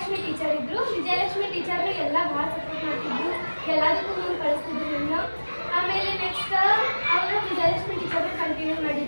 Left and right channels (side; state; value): both; inverted; correlation -1.00